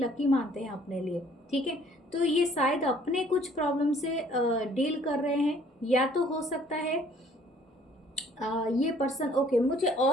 मानते हैं अपने लिए, ठीक है। तो ये शायद अपने कुछ प्रॉब्लम से डील कर रहे हैं, या तो हो सकता है ये पर्सन, ओके, मुझे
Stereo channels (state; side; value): normal; both; correlation 0.58